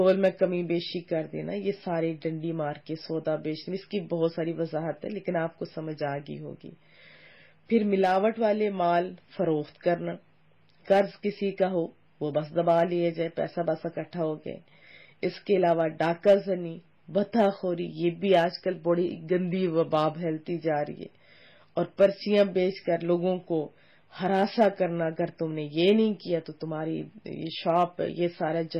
میں کمی بیشی کر دینا. یہ سارے ڈنڈی مار کے سودا بیچنا. اس کی بہت ساری وضاحت ہے لیکن آپ کو سمجھ آ گئی ہوگی. پھر ملاوٹ والے مال فروخت کرنا، قرض کسی کا ہو وہ بس دبا لیے جائے، پیسہ بس اکٹھا ہو گئے. اس کے علاوہ ڈاکہ زنی، بتہ خوری، یہ بھی آج کل بڑی گندی وبا پھیلتی جا رہی ہے. اور پرچیاں بیچ کر لوگوں کو ہراساں کرنا، اگر تم نے یہ نہیں کیا تو تمہاری یہ شاپ یہ سارا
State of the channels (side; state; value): both; identical; correlation 1.00